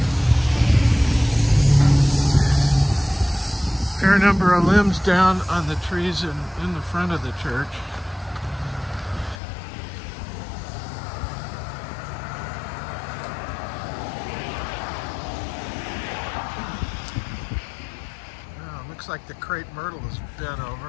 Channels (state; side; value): drops out; right; at 9.4 s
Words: Fair number of limbs down on the trees in the front of the church. Looks like the crepe myrtle is bent